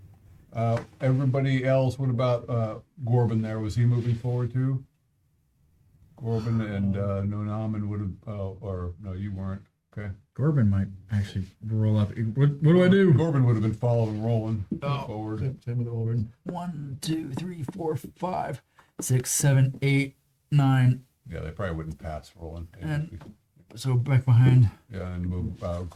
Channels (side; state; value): both; identical; correlation 1.00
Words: Everybody else, what about Gorbin there? Was he moving forward too? Corbin and Nonaman would have, or no, you weren't. Okay. Corbin might actually roll up. What do I do? Corbin would have been following, rolling forward. Same with Orban. 1, 2, 3, 4, 5, 6, 7, 8, 9. Yeah, they probably wouldn't pass rolling. And- So back behind. Yeah, and move